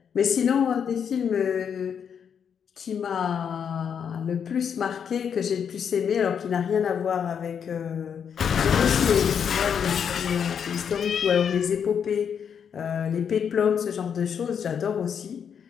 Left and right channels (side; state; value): right; quieter; 7.5 dB